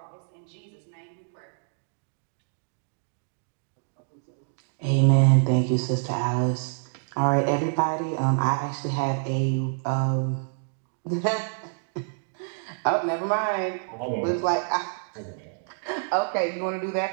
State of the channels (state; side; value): silent; left; digital silence